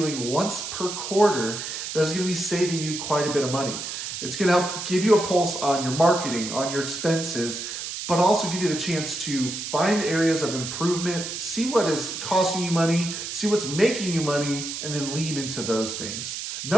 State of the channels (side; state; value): right; noise; hiss, 6 dB below the sound